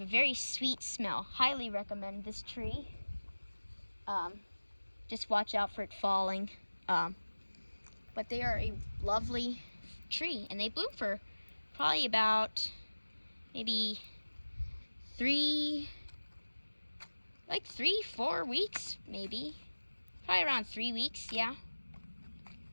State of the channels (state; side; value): inverted; both; correlation -1.00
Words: a very sweet smell. Highly recommend this tree. Just watch out for it falling. But they are a lovely tree, and they bloom for probably about maybe 3, 4 weeks, maybe. Probably around 3 weeks, yeah.